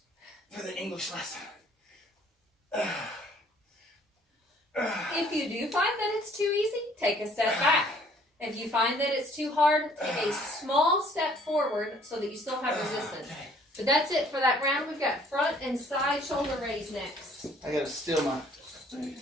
for the English lesson. If you do find that it's too easy, take a step back. If you find that it's too hard, take a small step forward so that you still have resistance. But that's it for that round. We've got front and side shoulder raise next. I gotta steal my.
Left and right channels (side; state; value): both; normal; correlation 0.58